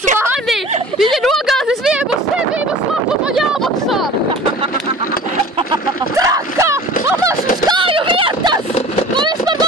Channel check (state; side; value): normal; both; correlation 0.41